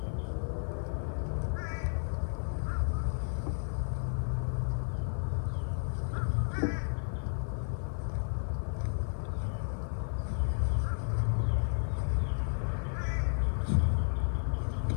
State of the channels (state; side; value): silent; right; 56 dB below the other